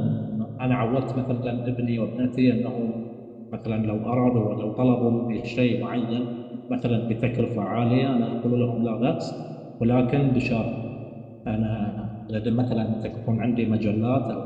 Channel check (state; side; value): identical; both; correlation 1.00